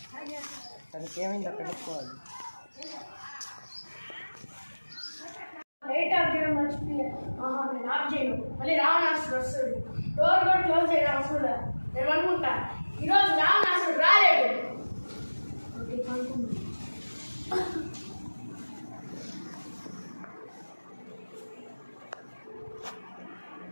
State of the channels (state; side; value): inverted; both; correlation -1.00